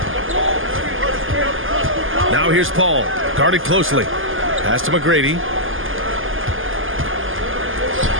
Now here's Paul, guarded closely. Pass to McGrady.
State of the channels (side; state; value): left; late; 0.59 ms